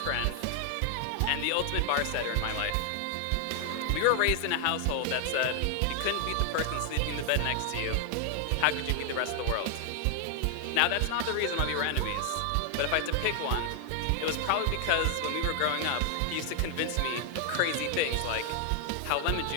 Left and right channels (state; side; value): different; both; correlation 0.00